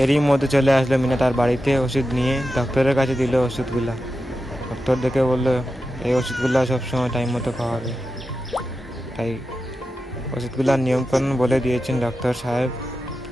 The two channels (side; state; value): both; normal; correlation 0.91